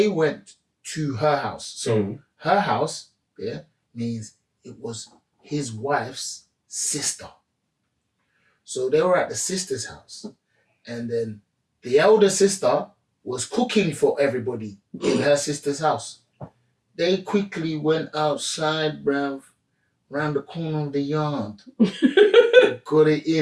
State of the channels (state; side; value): identical; both; correlation 1.00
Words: went to her house. So her house, yeah, means it was his wife's sister. So they were at the sister's house. And then the elder sister was cooking for everybody in her sister's house. They quickly went outside, bruv, round the corner of the yard, got it